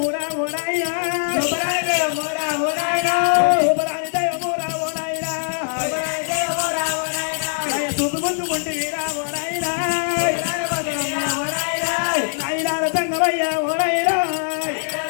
ఓ నాయనా సూపరాని దయమూరా ఓ నాయనా సూపు ముందుకుంటేరా ఓ నాయనా నాయనాల తంగవయ్య ఓ నాయనా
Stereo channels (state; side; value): silent; right; digital silence